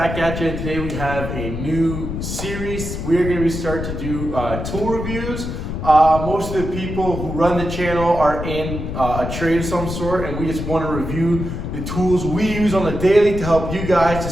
at you. And today we have a new series. We are going to start to do tool reviews. Most of the people who run the channel are in a trade of some sort, and we just want to review the tools we use on the daily to help you guys to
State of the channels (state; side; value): noise; left; rumble, 5 dB below the sound